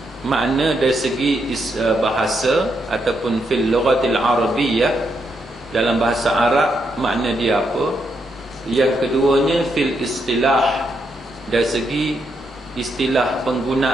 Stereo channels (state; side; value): normal; both; correlation 0.79